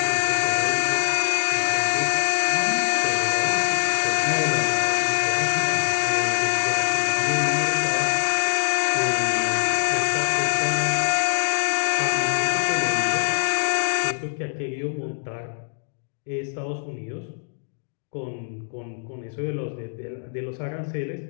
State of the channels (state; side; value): silent; right; digital silence